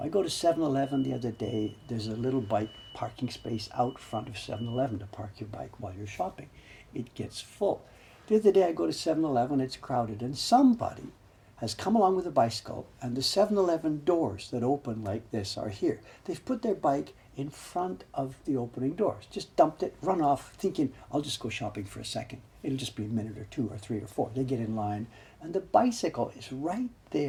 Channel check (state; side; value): identical; both; correlation 1.00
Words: go to 7-Eleven the other day. There's a little bike parking space out front of 7-Eleven to park your bike while you're shopping. It gets full. The other day I go to 7-Eleven, it's crowded, and somebody has come along with a bicycle, and the 7-Eleven doors that open like this are here. They've put their bike in front of the opening doors. Just dumped it, run off, thinking, I'll just go shopping for a second. It'll just be a minute or 2 or 3 or 4. They get in line, and the bicycle is right